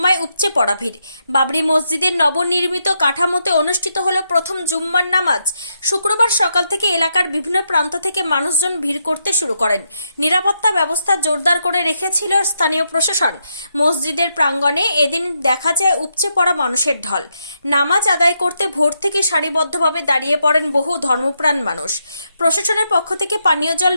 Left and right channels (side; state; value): both; inverted; correlation -0.81